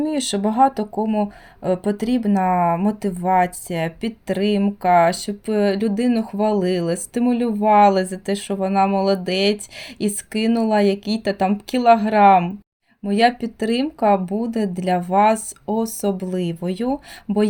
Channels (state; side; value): identical; both; correlation 1.00